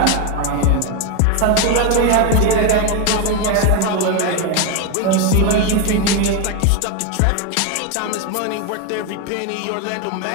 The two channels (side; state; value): both; different; correlation 0.02